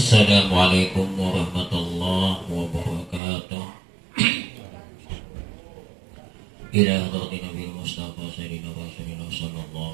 Assalamualaikum warahmatullahi wabarakatuh. Ila hadratin Nabi Mustafa Sayyidina Rasulullah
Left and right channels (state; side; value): drops out; left; at 3.2 s